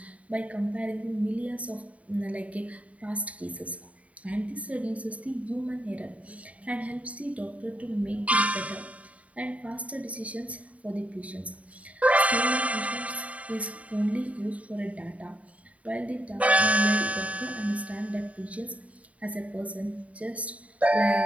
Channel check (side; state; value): left; late; 0.067 ms